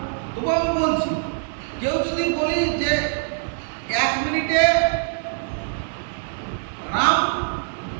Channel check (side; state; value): left; silent; digital silence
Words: তবু আমি বলছি কেউ যদি বলি যে 1 মিনিটে রাম